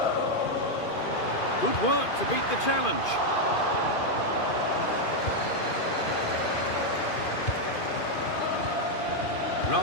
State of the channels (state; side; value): late; right; 2.5 ms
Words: Good work to beat the challenge.